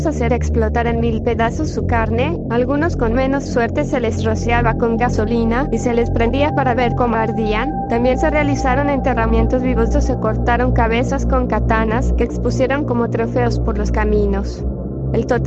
hacer explotar en 1000 pedazos su carne. Algunos con menos suerte se les rociaba con gasolina y se les prendía para ver cómo ardían. También se realizaron enterramientos vivos o se cortaron cabezas con katanas que expusieron como trofeos por los caminos. El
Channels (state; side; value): identical; both; correlation 1.00